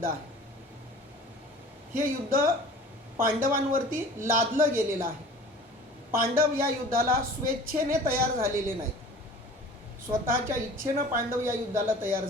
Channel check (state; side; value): normal; both; correlation 0.44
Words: आहे। हे युद्ध पांडवांवरती लादलं गेलेलं आहे। पांडव या युद्धाला स्वेच्छेने तयार झालेले नाहीत, स्वतःच्या इच्छेनं पांडव या युद्धाला तयार